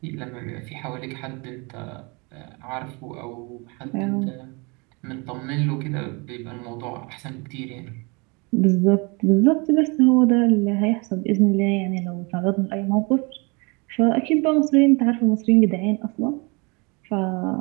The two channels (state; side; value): quieter; left; 29.3 dB